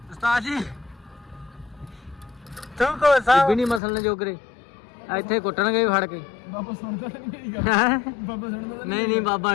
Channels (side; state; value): right; drops out; at 3.8 s